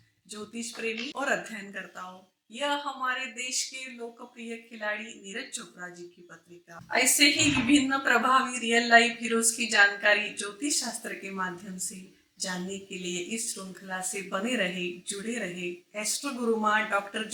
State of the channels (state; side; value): identical; both; correlation 1.00